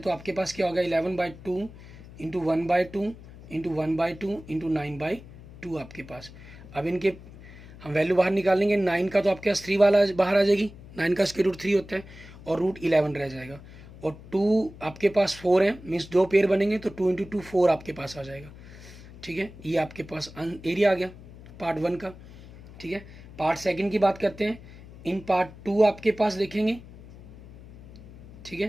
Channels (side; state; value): left; noise; hum, 18 dB below the sound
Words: आपके पास क्या होगा 11/2 × 1/2 × 1/2 × 9/2 आपके पास। अब इनके हम वैल्यू बाहर निकालेंगे, 9 का तो आपके पास 3 वाला बाहर आ जाएगी, 9 का स्क्वायर रूट 3 होता है, और रूट 11 रह जाएगा। और 2 आपके पास 4 है, मीन्स 2 पेयर बनेंगे तो 2 × 2 4 आपके पास आ जाएगा। ठीक है, ये आपके पास एरिया आ गया पार्ट 1 का। ठीक है, पार्ट 2 की बात करते हैं। इन पार्ट 2 आपके पास देखेंगे, ठीक है,